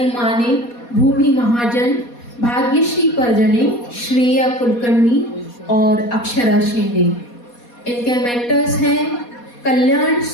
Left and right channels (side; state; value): right; late; 4.2 ms